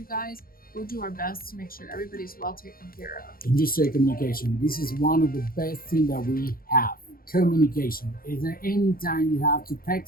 guys, we'll do our best to make sure everybody's well taken care of. And you say communication. This is one of the best things that we have. Communication. Is there any time you have to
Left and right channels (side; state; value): right; late; 0.42 ms